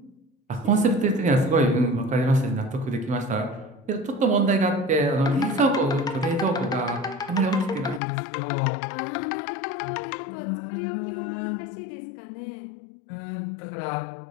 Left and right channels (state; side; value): drops out; right; at 8.0 s